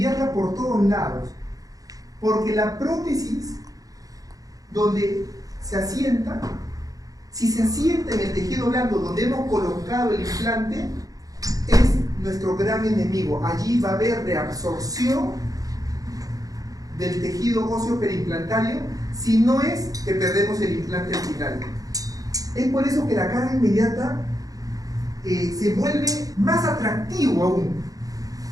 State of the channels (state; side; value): late; left; 0.17 ms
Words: por todos lados, porque la prótesis donde se asienta, si se asienta en el tejido blando donde hemos colocado el implante, es nuestro gran enemigo. Allí va a haber reabsorción del tejido óseo periimplantario, si no es que perdemos el implante al final. Es por eso que la carga inmediata se vuelve más atractivo aún,